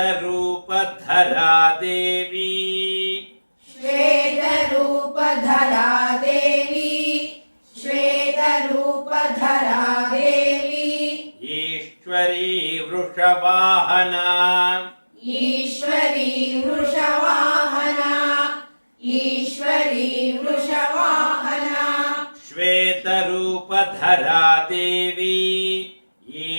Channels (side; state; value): both; inverted; correlation -1.00